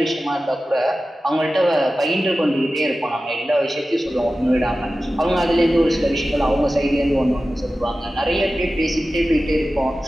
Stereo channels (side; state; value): both; normal; correlation 0.95